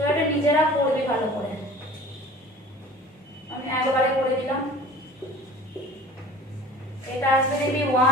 এটা নিজেরা পড়বে ভালো করে, আমি একবারে করে দিলাম। এটা আসবে দেখবি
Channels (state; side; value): normal; both; correlation 0.44